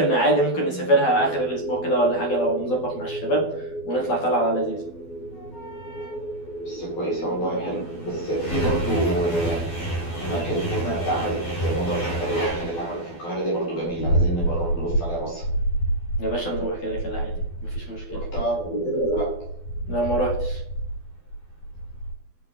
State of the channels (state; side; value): late; right; 12 ms